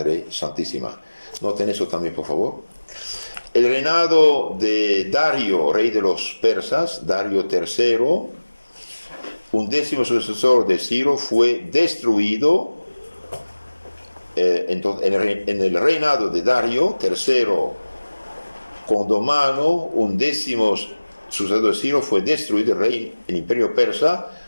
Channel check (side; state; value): both; inverted; correlation -1.00